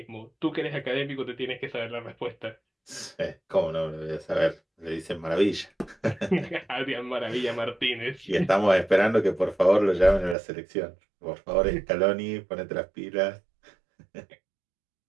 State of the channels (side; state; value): left; drops out; at 10.4 s